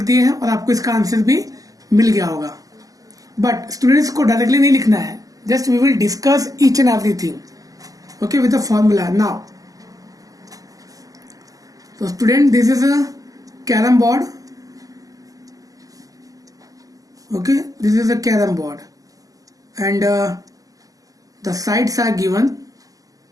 दिए हैं और आपको इसका answer भी मिल गया होगा. बट स्टूडेंट्स को डायरेक्टली नहीं लिखना है, just we will discuss each and everything okay with the formula. Now तो student, this is a carrom board. Okay, this is a carrom board and the sides are given.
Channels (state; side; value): late; left; 0.17 ms